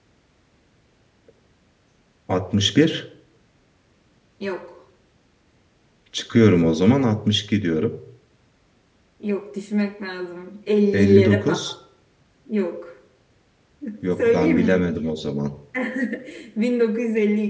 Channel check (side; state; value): both; identical; correlation 1.00